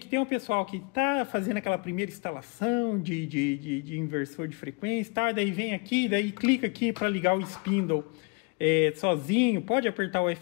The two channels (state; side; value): quieter; right; 32.3 dB